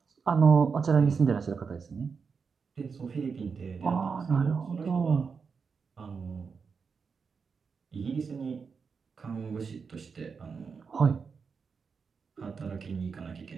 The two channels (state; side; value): quieter; left; 5.5 dB